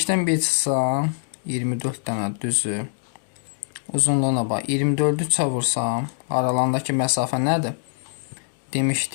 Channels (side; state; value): right; silent; digital silence